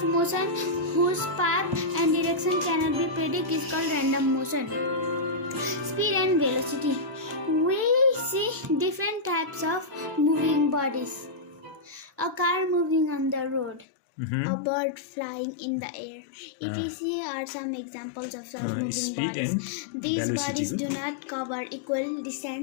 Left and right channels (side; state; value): right; drops out; at 13.9 s